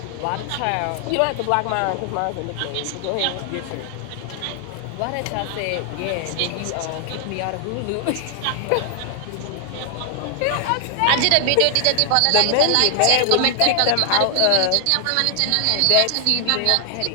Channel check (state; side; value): different; both; correlation 0.00